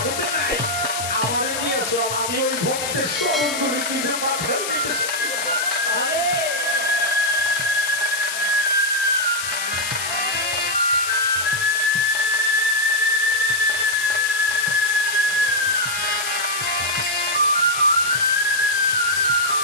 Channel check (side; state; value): left; noise; hiss, 4 dB below the sound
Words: নাই। আমার দিয়েছে, আমি ওই ভক্তের চরণগুলি নিজের মাথায় নিতেছি।